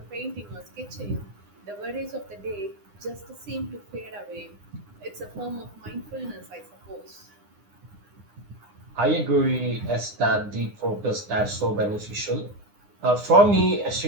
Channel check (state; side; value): late; left; 9.8 ms